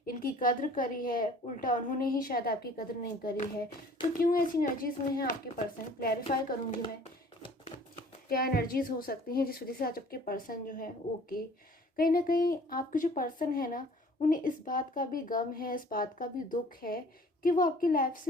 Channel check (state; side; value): normal; both; correlation 0.51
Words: इनकी कद्र करी है, उल्टा उन्होंने ही शायद आपकी कद्र नहीं करी है। तो क्यों ऐसी एनर्जीज में है आपके पर्सन, क्लैरिफाई करूँगी मैं क्या एनर्जीज हो सकती हैं जिस वजह से आज आपके पर्सन जो है। ओके, कहीं ना कहीं आपके जो पर्सन है ना, उन्हें इस बात का भी गम है, इस बात का भी दुख है कि वो आपकी लाइफ